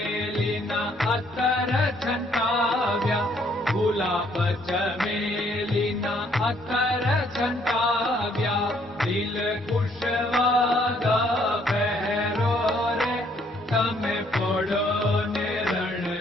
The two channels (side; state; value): both; normal; correlation 0.66